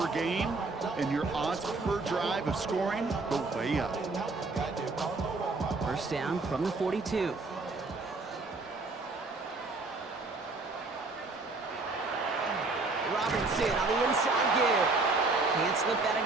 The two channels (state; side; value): quieter; left; 3.6 dB